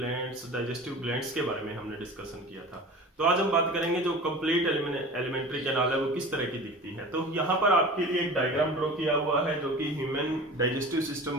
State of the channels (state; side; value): normal; both; correlation 0.37